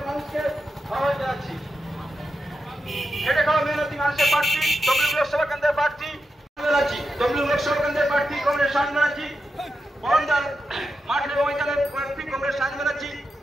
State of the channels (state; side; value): normal; both; correlation 0.88